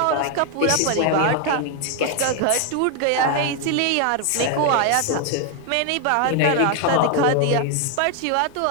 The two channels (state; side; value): different; both; correlation 0.00